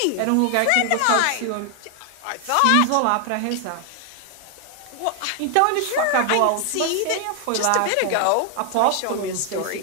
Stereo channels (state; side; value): different; both; correlation 0.00